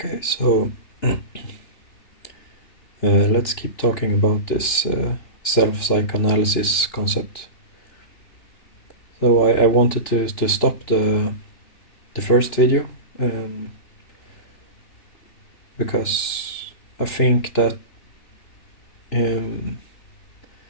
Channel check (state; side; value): late; right; 3.4 ms